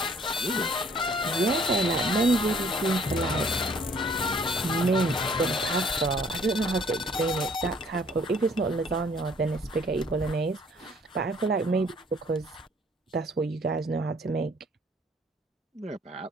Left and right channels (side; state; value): both; normal; correlation 0.59